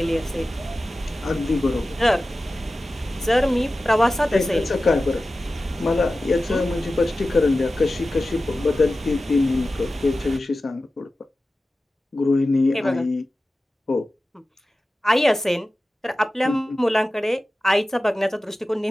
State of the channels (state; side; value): normal; both; correlation 0.95